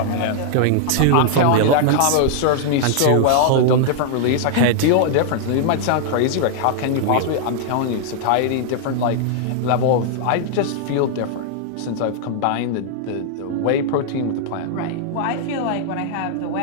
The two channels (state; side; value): different; both; correlation -0.01